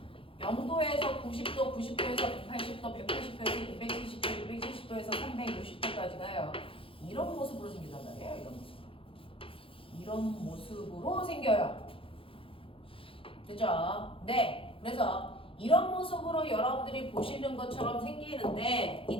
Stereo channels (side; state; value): right; late; 0.26 ms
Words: 0도에서 90도, 90도에서 180도, 180도에서 270도, 270도에서 360도까지 가요. 이런 모습으로 생긴단 말이에요. 이런 모습으로. 이런 모습으로 생겨요. 됐죠? 네. 그래서 이런 모습으로 여러분들이 보시는 것처럼 생기는데